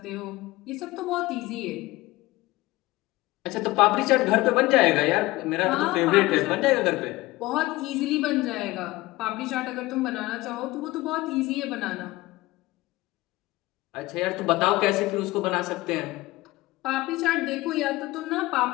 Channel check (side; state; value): right; quieter; 19.5 dB